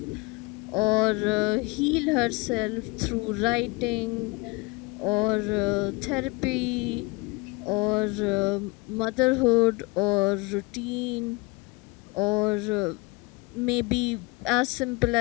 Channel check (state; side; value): quieter; right; 24.4 dB